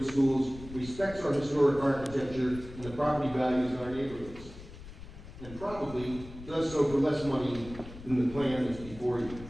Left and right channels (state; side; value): noise; left; rumble, 15 dB below the sound